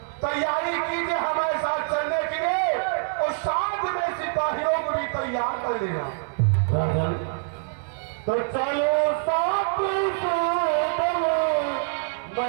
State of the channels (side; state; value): left; silent; 62 dB below the other